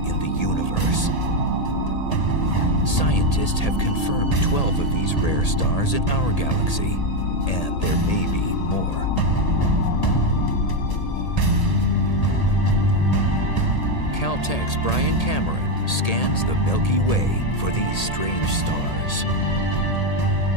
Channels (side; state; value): right; late; 1.8 ms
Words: the universe. Scientists have confirmed 12 of these rare stars in our galaxy, and there may be more. Caltech's Brian Cameron scans the Milky Way for these strange stars.